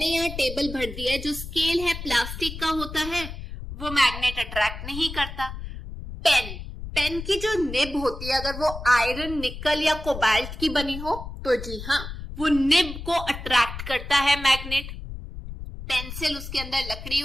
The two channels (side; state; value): left; noise; rumble, 10 dB below the sound